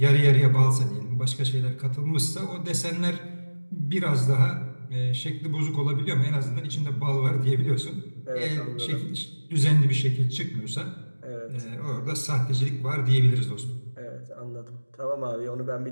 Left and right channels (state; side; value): inverted; both; correlation -1.00